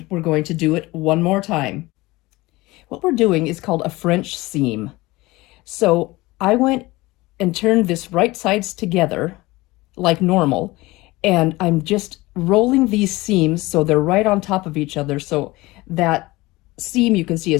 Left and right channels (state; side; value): quieter; right; 20.7 dB